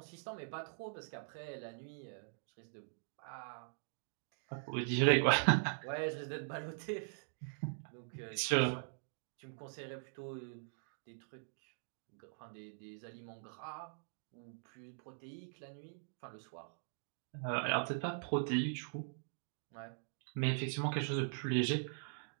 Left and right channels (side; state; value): left; silent; digital silence